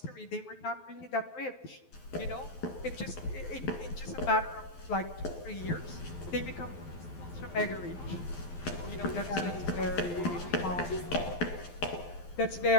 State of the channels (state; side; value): late; right; 12 ms